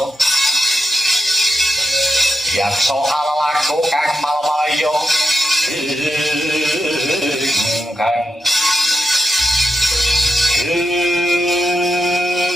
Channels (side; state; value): both; normal; correlation 0.87